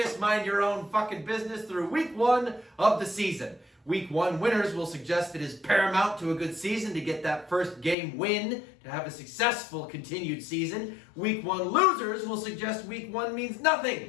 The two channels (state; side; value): drops out; right; at 8.0 s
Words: Mind your own fucking business through week 1 of the season. Week 1 winners will suggest it is paramount to a good season to get that first game win to have a successful continued season. Week 1 losers will suggest week 1 means